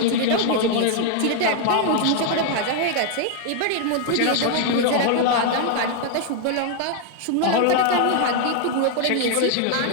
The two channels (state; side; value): different; both; correlation 0.00